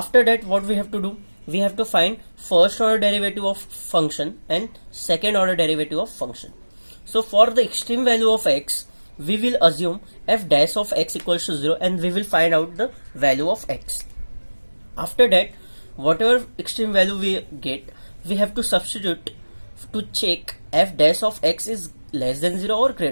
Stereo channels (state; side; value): inverted; both; correlation -1.00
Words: that what we have to do, we have to find first order derivative of function and second order derivative of function. So for the extreme value of x, we will assume f dash of x equals to 0 and we will find out the value of x. After that, whatever extreme value we get, we have to substitute to check f dash of x is less than 0 or